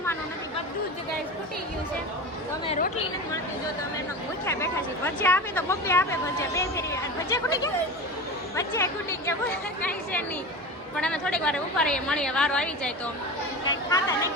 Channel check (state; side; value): normal; both; correlation 0.28